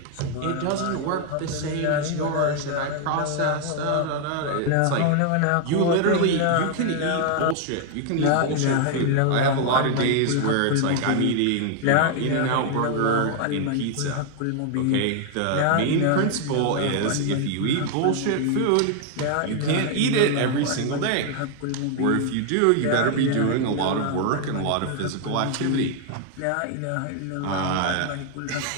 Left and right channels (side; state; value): both; different; correlation 0.00